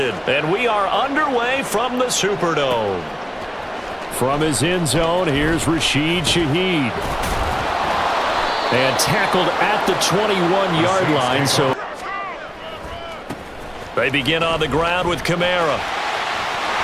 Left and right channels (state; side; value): identical; both; correlation 1.00